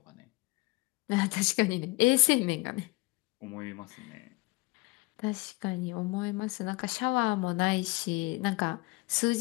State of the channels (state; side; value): quieter; right; 24.9 dB